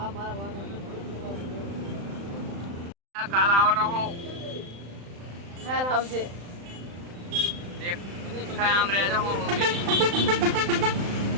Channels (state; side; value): late; left; 35 ms